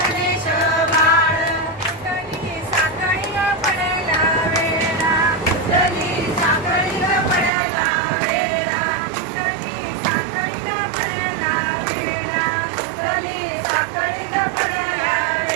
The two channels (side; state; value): left; drops out; at 7.5 s